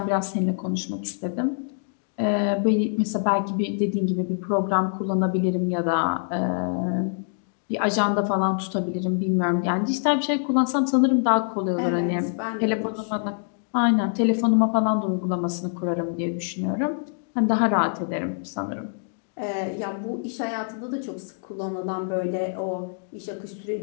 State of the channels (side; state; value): right; silent; digital silence